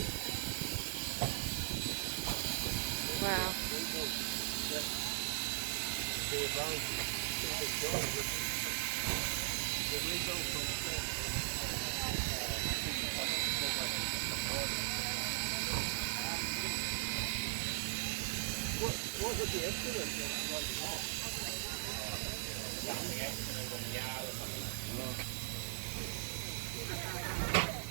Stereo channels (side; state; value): left; silent; digital silence